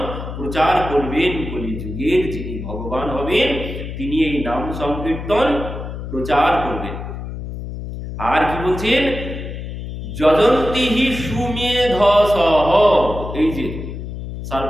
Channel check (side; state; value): left; noise; hum, 8 dB below the sound